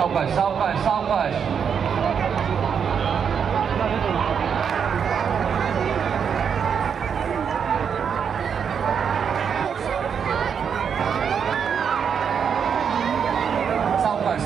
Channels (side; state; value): left; quieter; 7.2 dB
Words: सावकाश सावकाश. सावकाश